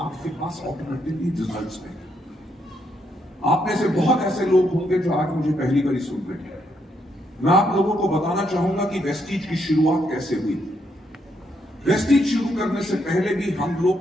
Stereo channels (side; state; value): both; normal; correlation 0.76